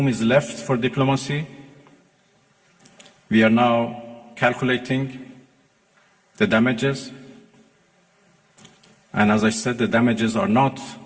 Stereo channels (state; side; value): identical; both; correlation 1.00